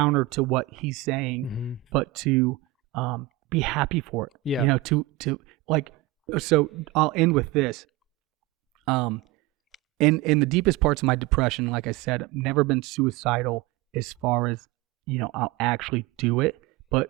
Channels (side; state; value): left; quieter; 17.2 dB